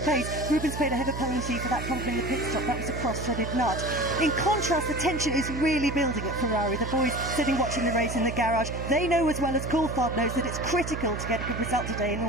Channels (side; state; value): right; noise; hum, 6 dB below the sound